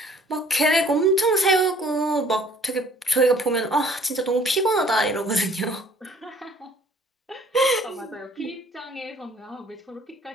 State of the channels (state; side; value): normal; both; correlation 0.55